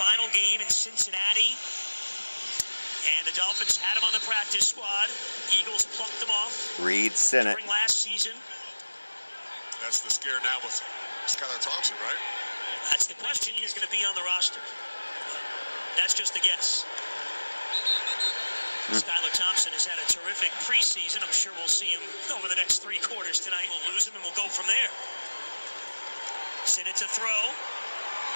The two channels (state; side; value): inverted; both; correlation -1.00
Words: game in Cincinnati. And the Dolphins had him on the practice squad. Eagles plucked him off Reed Sinnott. during last season. That's the scare now with Skylar Thompson, right? That's the question. He is going to be on the roster. That's just a guess. Skylar Thompson has had a terrific preseason. I'm sure we'll see him over the next 3 quarters tonight. We'll lose him and we'll go from there. Sinnott to throw.